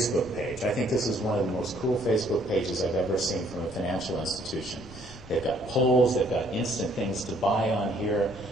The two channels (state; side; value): noise; left; rumble, 18 dB below the sound